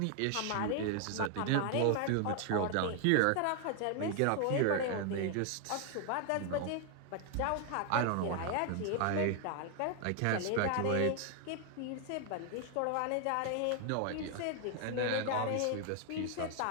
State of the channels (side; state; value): both; different; correlation 0.00